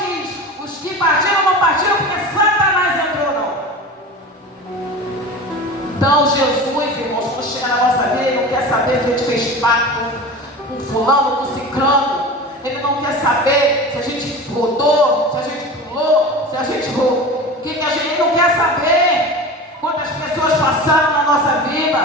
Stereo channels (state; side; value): normal; both; correlation 0.32